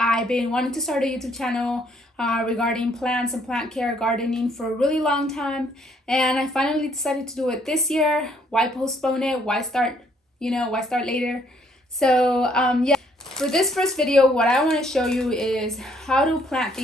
been wanting to start a YouTube channel regarding plants and plant care, gardening for a really long time, and I finally decided to do it this year. Why postpone it? Why start? Why start later? So yeah, for this first video, what I want to show you is how to plant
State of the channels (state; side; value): normal; both; correlation 0.66